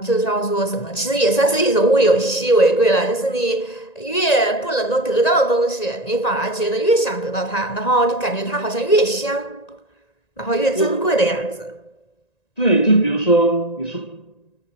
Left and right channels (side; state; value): right; late; 1.9 ms